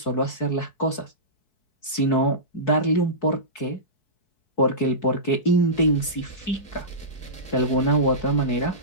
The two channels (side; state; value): right; late; 4.6 ms